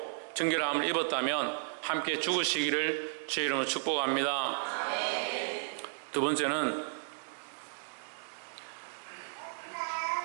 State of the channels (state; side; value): silent; left; digital silence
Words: 정결함을 입었다면 함께 죽으시기를 주의 이름으로 축복합니다. 두 번째는